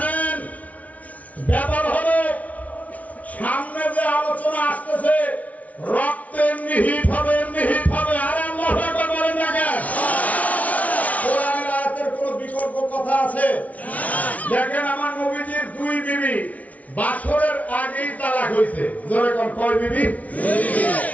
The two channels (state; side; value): late; right; 0.070 ms